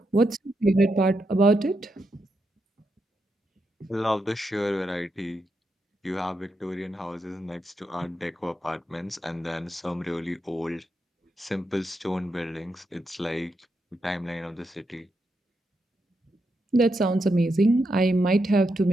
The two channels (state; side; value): normal; both; correlation 0.83